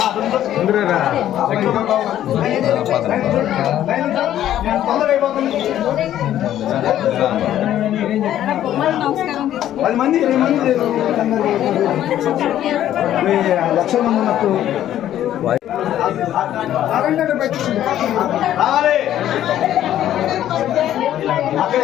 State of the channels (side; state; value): right; quieter; 11.9 dB